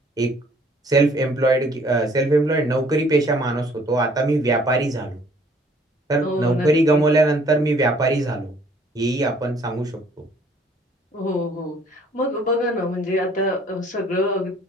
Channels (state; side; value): normal; both; correlation 0.59